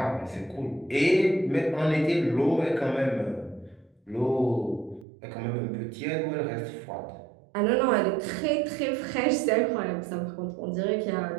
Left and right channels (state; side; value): drops out; left; at 5.1 s